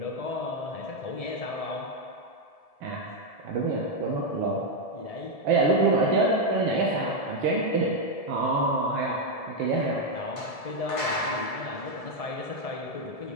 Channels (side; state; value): right; late; 1.7 ms